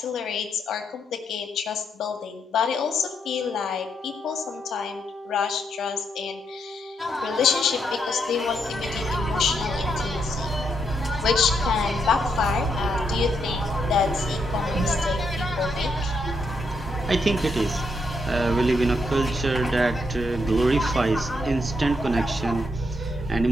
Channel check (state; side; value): normal; both; correlation 0.78